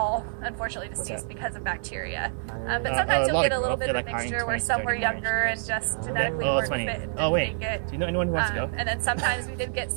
unfortunately deceased up? because of bacteria. But a sometimes you'll lot get of a little growth, bit of a like, mixture hiring where some were 20, younger and just genetically Oh, weren't it's fit funny. and Oh, wait. didn't make it. Do you know anyone who wants to go? And then sometimes we did get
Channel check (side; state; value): left; silent; digital silence